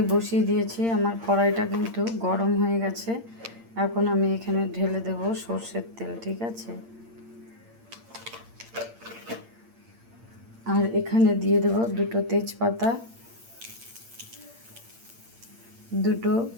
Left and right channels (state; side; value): late; left; 8.7 ms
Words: বসিয়ে দিয়েছি, আমার কড়াইটা কিন্তু গরম হয়ে গেছে। এখন আমি এখানে ঢেলে দেব সর্ষের তেল, ঠিক আছে। আর এখানে দিয়ে দেব দুটো তেজপাতা, দুটো